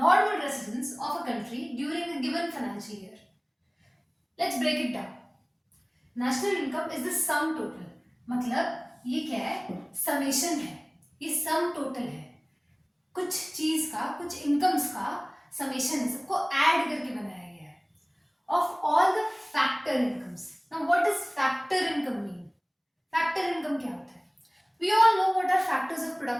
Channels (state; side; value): identical; both; correlation 1.00